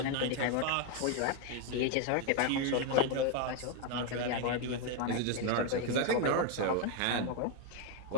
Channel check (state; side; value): different; both; correlation 0.01